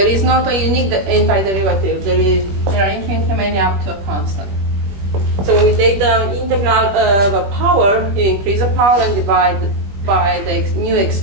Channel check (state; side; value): late; left; 20 ms